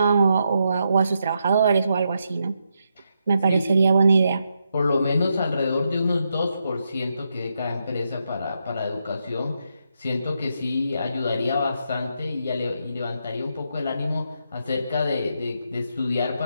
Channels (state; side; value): inverted; both; correlation -0.82